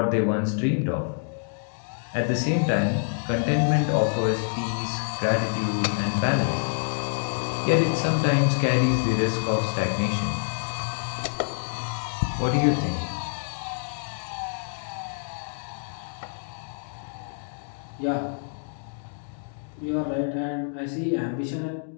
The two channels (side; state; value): right; silent; digital silence